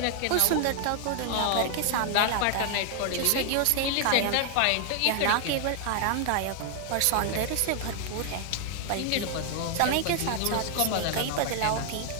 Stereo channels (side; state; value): both; different; correlation 0.00